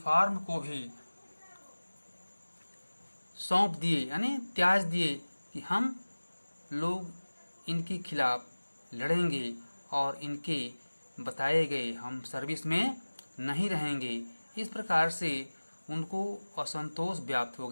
को भी सौंप दिए, यानी त्याज दिए कि हम लोग इनके खिलाफ लड़ेंगे और इनके बताए गए हम सर्विस में नहीं रहेंगे। इस प्रकार से उनको असंतोष व्याप्त हो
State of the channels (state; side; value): inverted; both; correlation -1.00